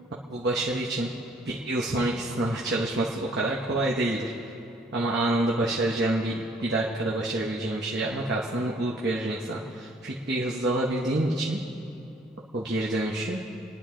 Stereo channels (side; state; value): both; normal; correlation 0.61